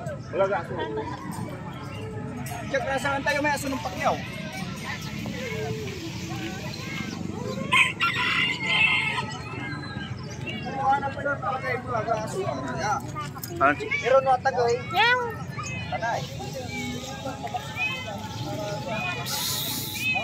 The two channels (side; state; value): both; identical; correlation 1.00